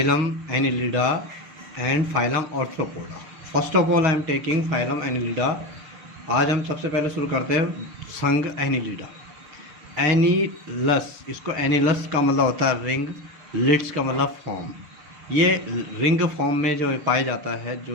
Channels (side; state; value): left; late; 6.6 ms